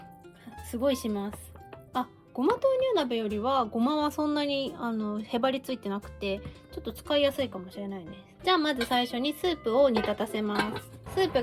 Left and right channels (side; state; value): both; identical; correlation 1.00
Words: すごいします。あ、ごま豆乳鍋よりはごまはそんなにへばりついてなくてちょっと使いやすいかもしれないです。じゃあまず最初にスープを煮立たせます。スープ